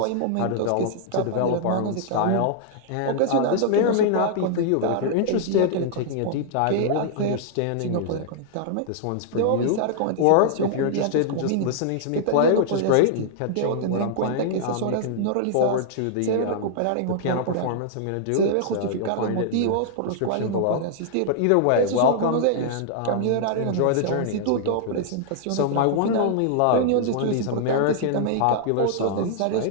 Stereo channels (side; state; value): both; different; correlation -0.01